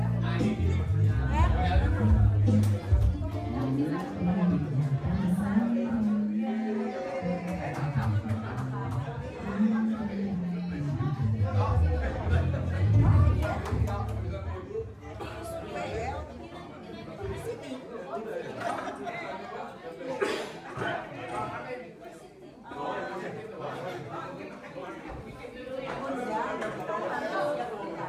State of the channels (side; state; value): both; identical; correlation 1.00